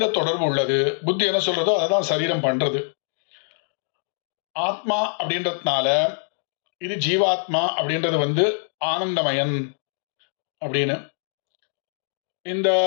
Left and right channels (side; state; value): right; silent; 55 dB below the other